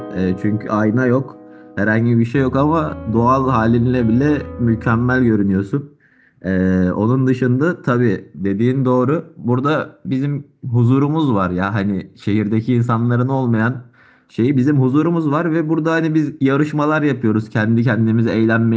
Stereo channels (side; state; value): both; identical; correlation 1.00